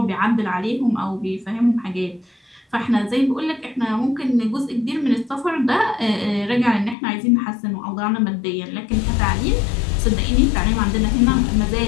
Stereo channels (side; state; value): right; drops out; at 7.0 s